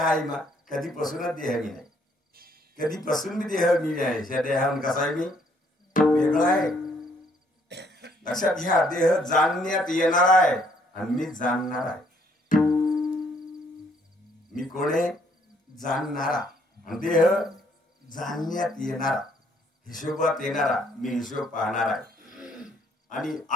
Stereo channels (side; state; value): both; normal; correlation 0.67